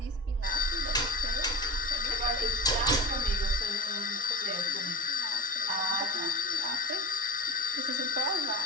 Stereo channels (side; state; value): both; normal; correlation 0.30